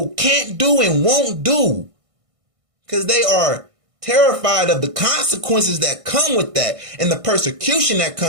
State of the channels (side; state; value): left; late; 1.6 ms